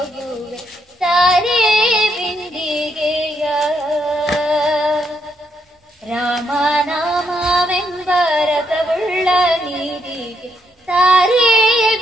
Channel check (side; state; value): both; normal; correlation 0.76